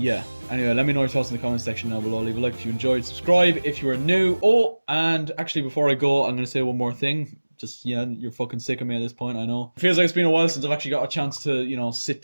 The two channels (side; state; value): both; inverted; correlation -1.00